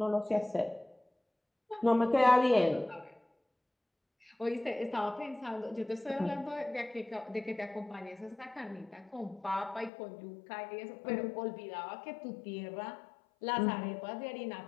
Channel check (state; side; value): drops out; right; at 9.9 s